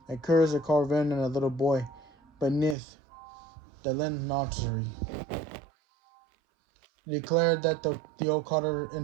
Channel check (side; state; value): left; drops out; at 2.8 s